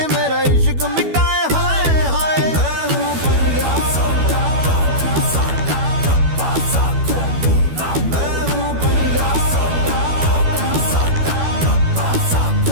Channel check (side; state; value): left; late; 12 ms